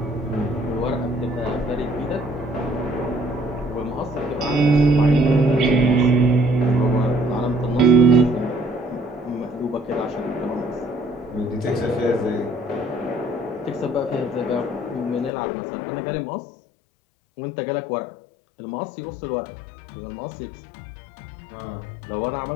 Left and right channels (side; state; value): right; drops out; at 15.3 s